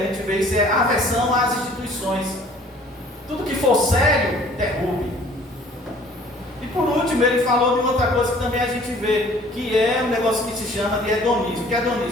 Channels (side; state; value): both; normal; correlation 0.53